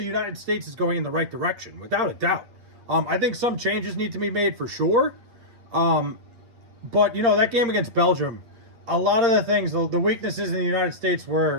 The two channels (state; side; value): late; left; 8.6 ms